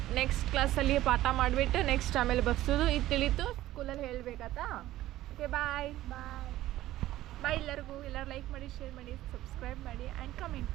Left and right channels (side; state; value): left; quieter; 15.0 dB